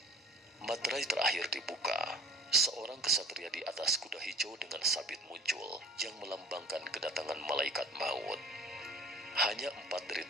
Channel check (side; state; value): both; normal; correlation 0.46